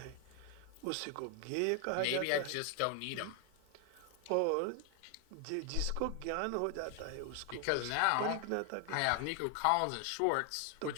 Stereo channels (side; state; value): both; different; correlation 0.00